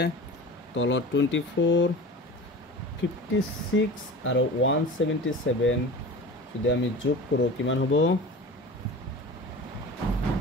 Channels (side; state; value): both; normal; correlation 0.36